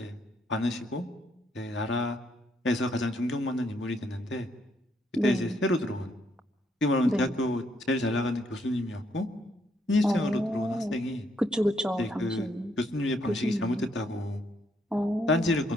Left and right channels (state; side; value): normal; both; correlation 0.73